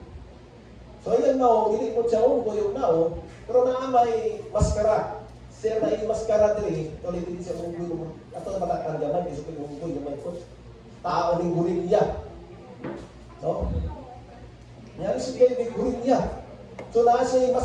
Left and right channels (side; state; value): both; identical; correlation 1.00